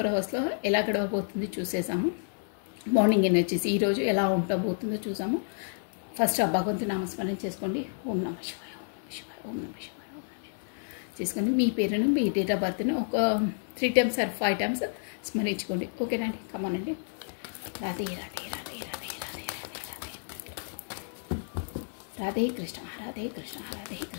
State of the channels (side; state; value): right; silent; 58 dB below the other